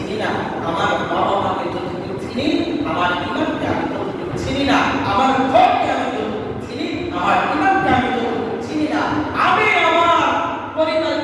না, আমার বাবা মাকে যতটুকু চিনি, আমার ইমানকে আমি ততটুকু চিনি না, আমার ঘরকে আমি যতটুকু চিনি, আমার ইমানকে আমি যতটুকু চিনি না, আমি আমার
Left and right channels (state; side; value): identical; both; correlation 1.00